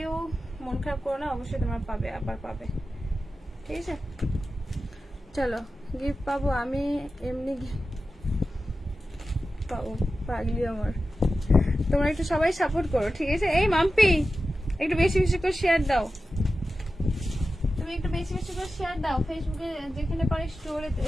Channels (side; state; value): both; normal; correlation 0.93